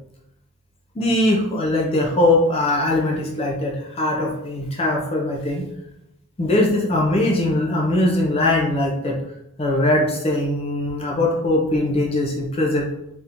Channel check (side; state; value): both; normal; correlation 0.42